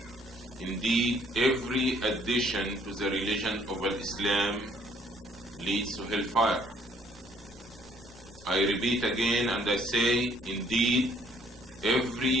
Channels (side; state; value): both; normal; correlation 0.63